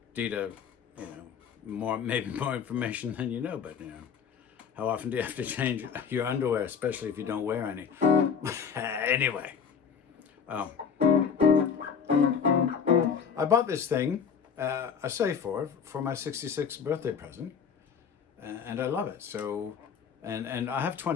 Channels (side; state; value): right; quieter; 6.7 dB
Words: Dieter, maybe more information than you know, but how often do you have to change your underwear, especially if you don't wear any? Anyway, I bought this thing, I saved for my 66th birthday present. And I love it. So, and I have